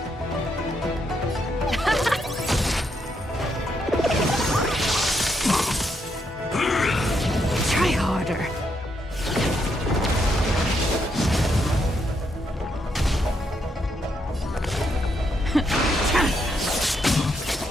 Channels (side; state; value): both; normal; correlation 0.78